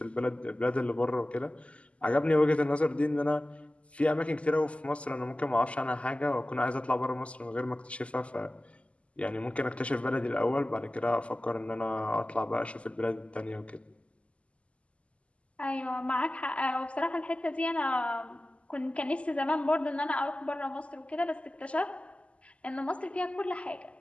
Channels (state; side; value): late; right; 0.059 ms